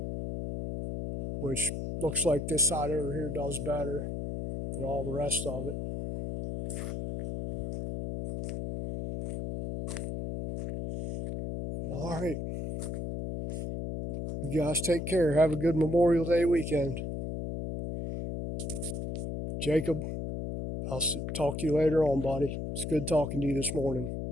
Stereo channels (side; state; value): left; noise; hum, 4 dB below the sound